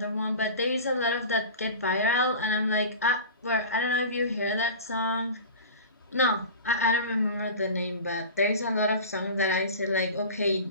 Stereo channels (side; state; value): both; inverted; correlation -0.34